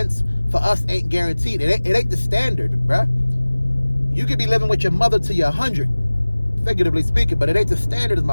for us ain't guaranteed. It ain't the standard, bruh. You could be living with your mother till you're 100, figuratively speaking, but it ain't the standard is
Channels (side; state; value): both; inverted; correlation -1.00